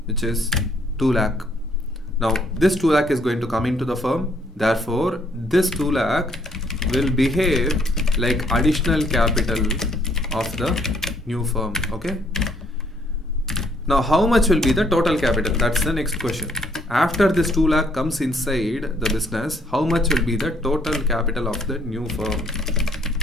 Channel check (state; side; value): normal; both; correlation 0.66